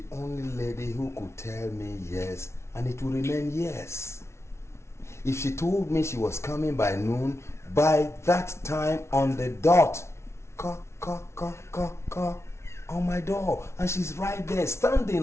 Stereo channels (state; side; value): late; right; 0.13 ms